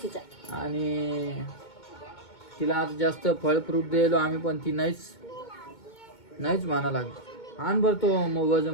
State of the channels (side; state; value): right; late; 2.2 ms